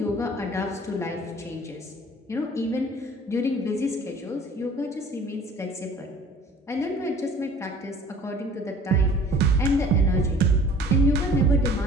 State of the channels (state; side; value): normal; both; correlation 0.49